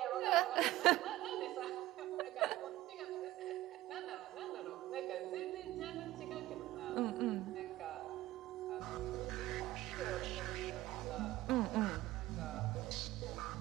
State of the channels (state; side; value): quieter; left; 16.3 dB